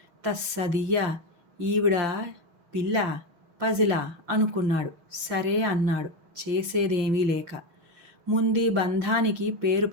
తస్సదియ్యా, ఈవిడ పిల్ల పజిలా అనుకున్నాడు. సరే అన్నాడు చేసేదేమీ లేక. ముందీ బంధానికి పేరు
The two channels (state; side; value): late; left; 6.3 ms